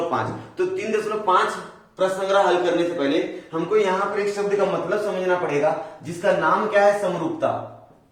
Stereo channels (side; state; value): both; identical; correlation 1.00